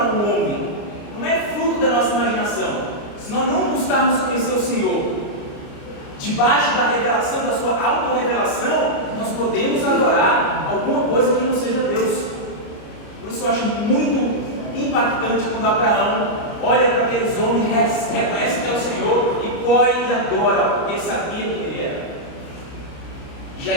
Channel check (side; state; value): right; late; 29 ms